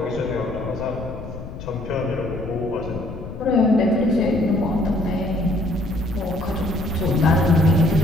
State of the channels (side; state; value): left; noise; rumble, 11 dB below the sound